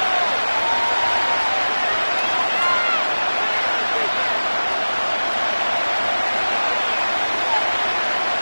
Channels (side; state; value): both; inverted; correlation -1.00